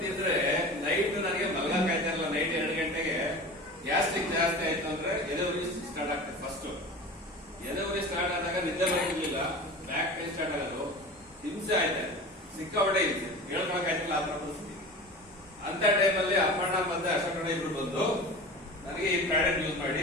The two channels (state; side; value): normal; both; correlation 0.34